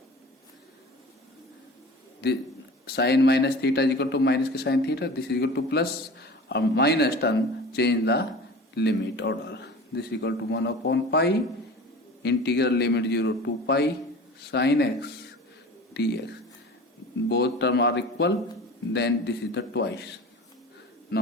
The sin minus theta is equal to minus k sin theta. This is equal to plus or minus term, change the limit order. This is equal to 1 upon pi integral limit 0 to pi sin x dx. Both terms are equal, then this is the twice.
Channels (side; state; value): both; normal; correlation 0.38